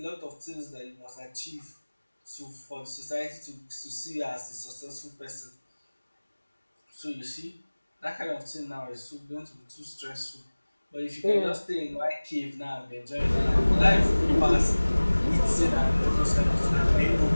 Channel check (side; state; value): both; inverted; correlation -1.00